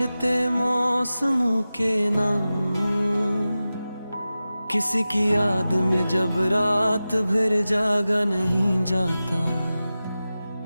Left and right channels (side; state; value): both; inverted; correlation -0.95